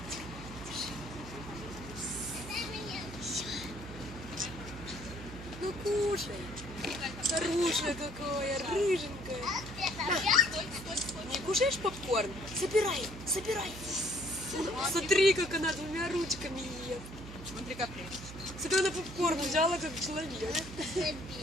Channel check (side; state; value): right; noise; hum, 12 dB below the sound